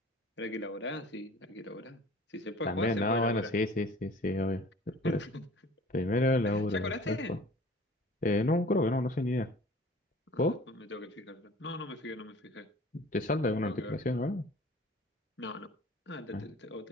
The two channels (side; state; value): both; normal; correlation 0.47